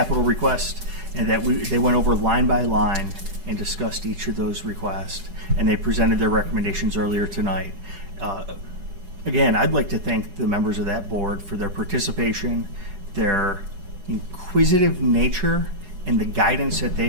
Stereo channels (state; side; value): late; left; 10 ms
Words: requests, and they went over line by line and discussed each of those requests, and they presented their recommendations earlier tonight. Again, I'd like to thank the members of that board for their participation, their inquisitive nature, and the guidance that